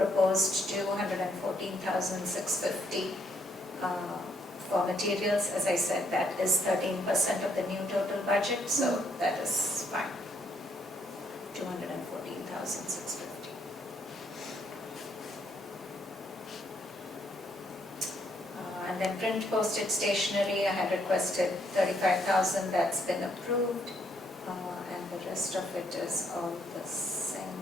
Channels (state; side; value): normal; both; correlation 0.72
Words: 214,650 for materials, as I said, that is 13% of the new total budget, so that is fine. 214,650. And then print, postage, stationery, I had requested 35,000, that's been approved. And the rest of it is all the same.